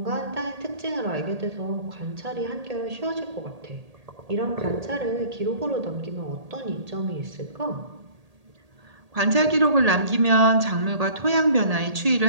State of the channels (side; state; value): left; late; 1.8 ms